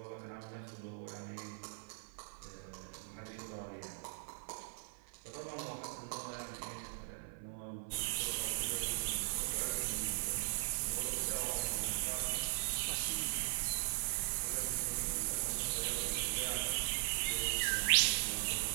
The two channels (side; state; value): left; silent; 51 dB below the other